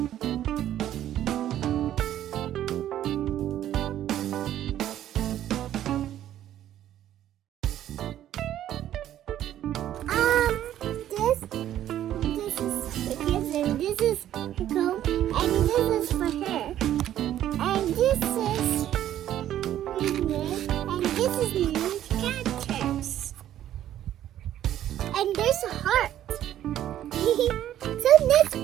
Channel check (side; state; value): left; quieter; 11.9 dB